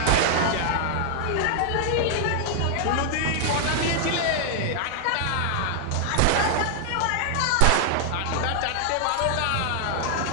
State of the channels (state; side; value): different; both; correlation 0.00